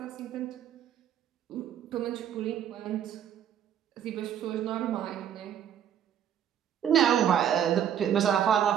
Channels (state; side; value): quieter; left; 9.5 dB